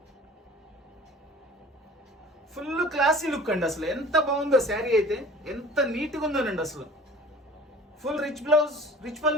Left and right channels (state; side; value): normal; both; correlation 0.46